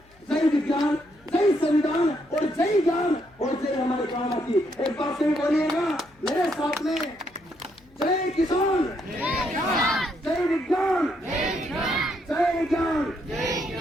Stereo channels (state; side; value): noise; left; hum, 30 dB below the sound